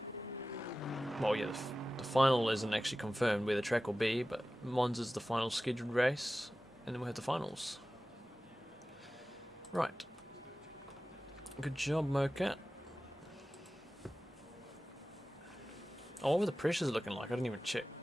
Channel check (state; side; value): normal; both; correlation 0.95